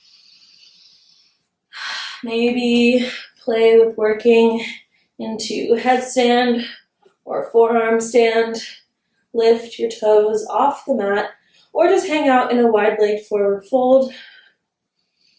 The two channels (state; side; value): identical; both; correlation 1.00